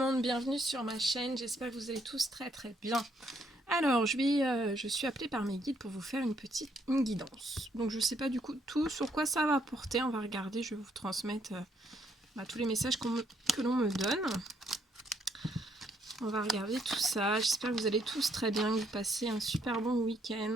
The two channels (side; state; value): both; normal; correlation 0.71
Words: bienvenue sur ma chaîne, j'espère que vous allez tous très bien. Alors, je suis appelée par mes guides pour vous faire une guidance. Donc je ne sais pas du coup tout sur quoi ça va porter, on va regarder, je vais vous transmettre tous les messages que l'on me donne. On va regarder tout ça, j'espère que vous allez tous très bien, que vous passez un super bon